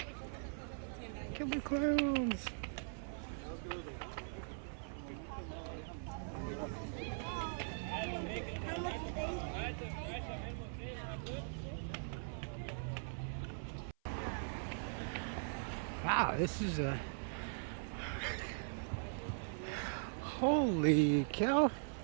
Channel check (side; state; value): left; silent; 50 dB below the other